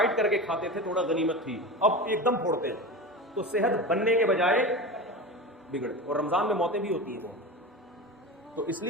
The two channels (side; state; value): both; normal; correlation 0.27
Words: کر کے کھاتے تھے, تھوڑا غنیمت تھی, اب ایک دم پھوڑتے ہیں, تو صحت بننے کے بجائے بگڑ. اور رمضان میں موتیں بھی ہوتی ہیں بہت. تو اس